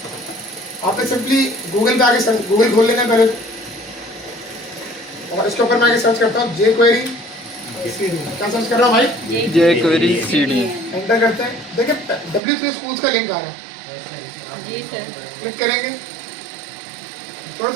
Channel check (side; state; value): left; drops out; at 12.4 s